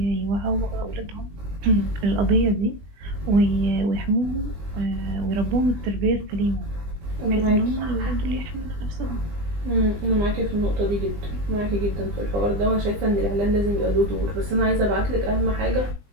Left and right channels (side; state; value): left; late; 20 ms